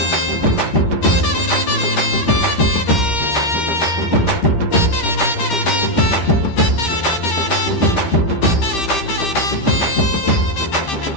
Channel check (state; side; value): late; right; 13 ms